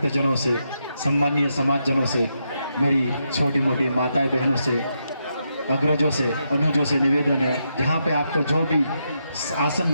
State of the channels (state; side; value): inverted; both; correlation -0.83